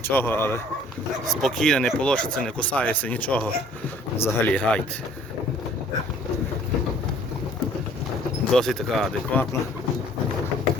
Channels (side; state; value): both; normal; correlation 0.55